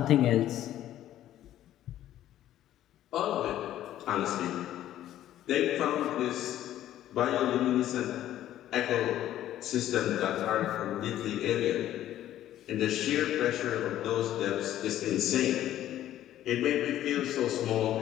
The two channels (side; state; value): right; quieter; 12.6 dB